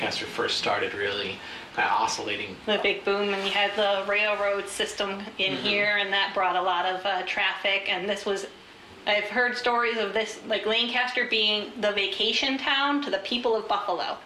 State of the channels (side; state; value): both; identical; correlation 1.00